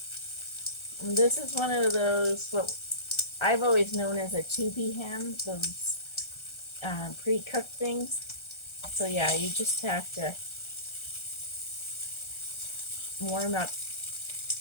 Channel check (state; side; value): late; right; 1.3 ms